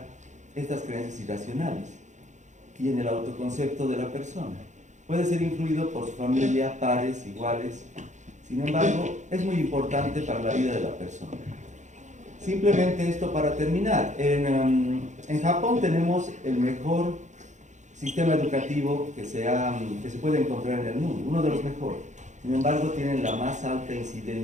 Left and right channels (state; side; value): late; left; 0.35 ms